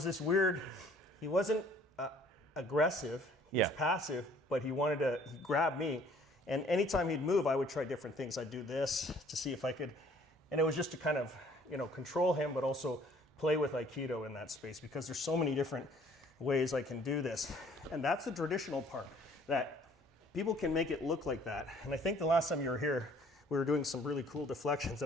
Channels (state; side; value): normal; both; correlation 0.57